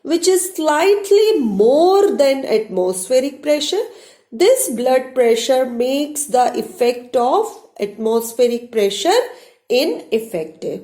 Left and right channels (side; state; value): both; identical; correlation 1.00